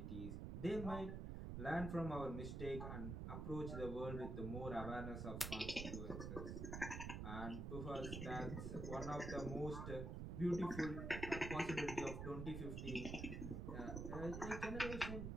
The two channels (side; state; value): right; noise; rumble, 4 dB below the sound